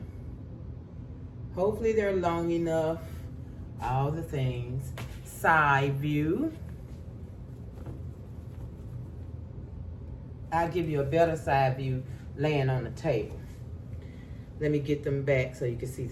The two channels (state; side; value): identical; both; correlation 1.00